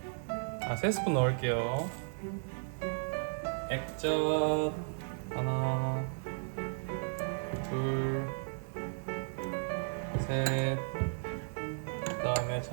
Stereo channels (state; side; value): silent; left; digital silence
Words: 3스푼 넣을게요. 액젓 하나, 둘, 셋. 그 다음에